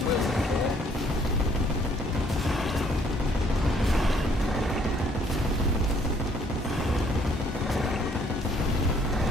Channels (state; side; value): normal; both; correlation 0.63